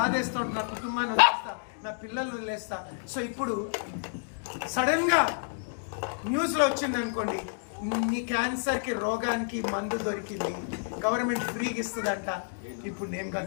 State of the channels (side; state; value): right; silent; digital silence